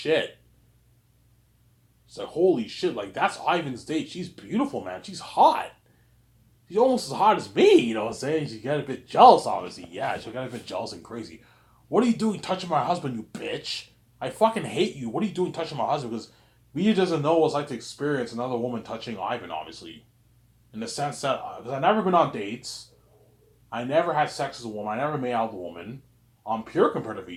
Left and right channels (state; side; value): identical; both; correlation 1.00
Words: She's like, holy shit. Like, that's Ivan's date. She's beautiful, man. She's hot. She's almost as hot as me. You know what I'm saying? She got a bit jealous, obviously. Yeah, she got a bit jealous and crazy. What are you doing touching my husband, you bitch? I fucking hate you. What are you doing touching my husband? Because VJ doesn't know what it's like to experience another woman touching Ivan, obviously. In the sense that, because I've never been on dates, I never had sex as a woman, I never made out with a woman. I'm pure compared to